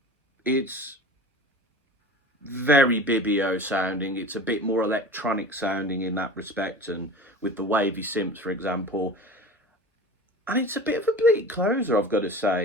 It's very Bibio sounding. It's a bit more electronic sounding in that respect, and with the wavy synths, for example. And it's a bit of a bleak closer, I've got to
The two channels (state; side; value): normal; both; correlation 0.36